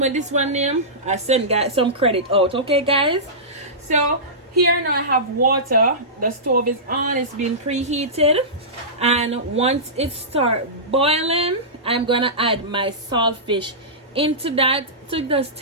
this one name, I send guys some credit out. Okay guys? So here now I have water. The stove is on, it's been preheated, and once it starts boiling, I'm gonna add my saltfish into that to just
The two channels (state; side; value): normal; both; correlation -0.18